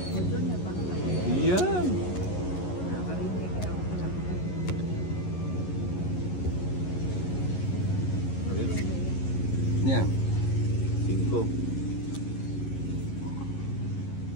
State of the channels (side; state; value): right; late; 11 ms